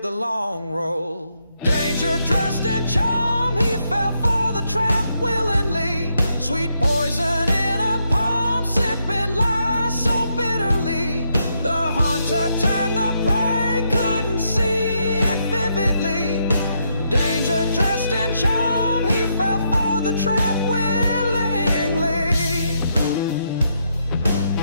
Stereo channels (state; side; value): inverted; both; correlation -0.78